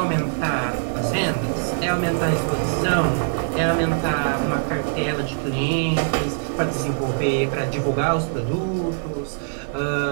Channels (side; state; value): left; silent; digital silence